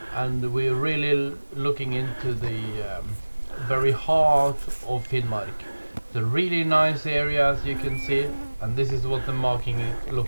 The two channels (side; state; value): both; inverted; correlation -1.00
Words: and we're really looking into the very heart of Finnmark. The really nice areas you can see, and this is what the marking